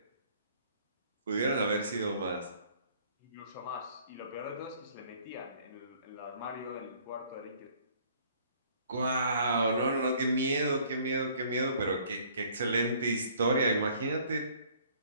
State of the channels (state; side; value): inverted; both; correlation -0.58